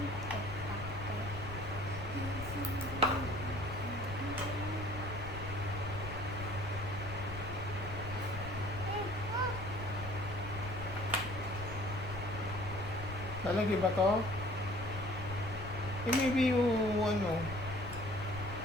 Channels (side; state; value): left; noise; rumble, 10 dB below the sound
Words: Lalagay ba to? Eh, maybe yung ano.